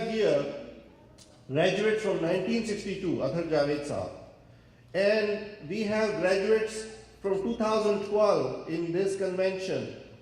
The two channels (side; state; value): both; identical; correlation 1.00